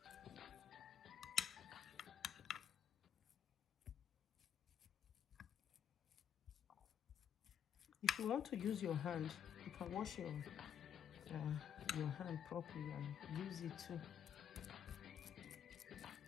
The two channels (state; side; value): quieter; right; 8.7 dB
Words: If you want to use your hand, you can wash your hand properly and use it too.